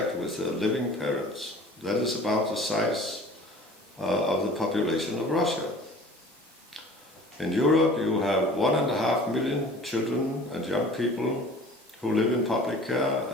with their living parents. That is about the size of the population of Russia. In Europe, you have 1.5 million children and young people who live in public care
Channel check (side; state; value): both; normal; correlation 0.45